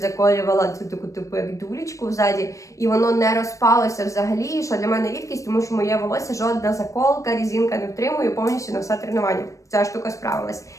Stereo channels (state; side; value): late; right; 0.15 ms